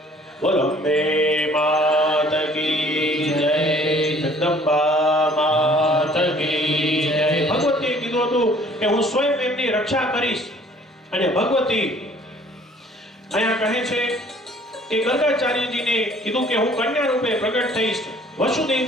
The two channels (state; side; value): normal; both; correlation 0.55